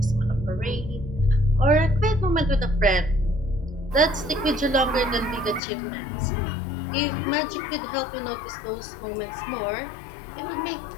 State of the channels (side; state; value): right; drops out; at 5.6 s